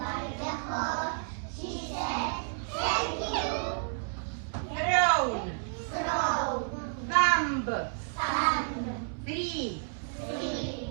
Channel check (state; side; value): silent; left; 57 dB below the other